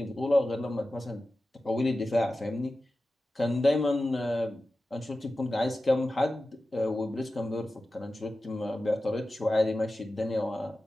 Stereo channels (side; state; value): both; normal; correlation 0.94